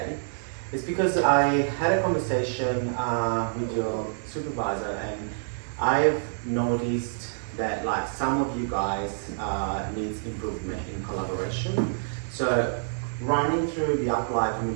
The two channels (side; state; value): left; silent; 60 dB below the other